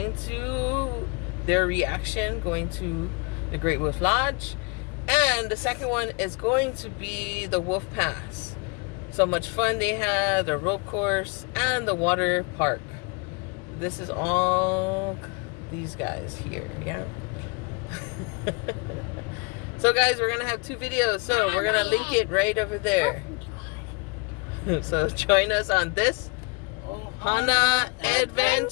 to their reaction going to the Great Wolf Lodge. And the second one is going to be the Wolf Pass. So much fun they had, the rope course, and the water park. This is all these guys here, yeah? So guys, we're gonna have 2 videos, so we're gonna link it right over there. So join us on this Ohana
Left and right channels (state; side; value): quieter; right; 31.5 dB